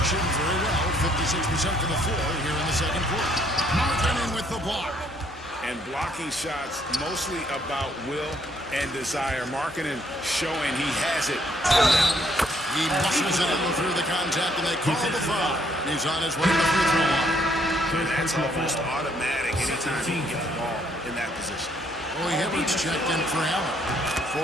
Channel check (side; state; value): both; normal; correlation 0.68